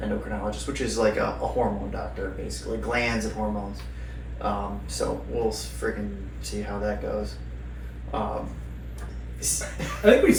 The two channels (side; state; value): both; identical; correlation 1.00